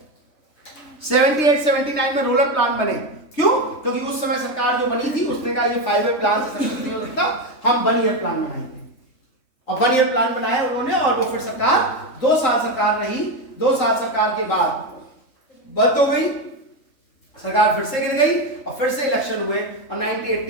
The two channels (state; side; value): late; right; 3.5 ms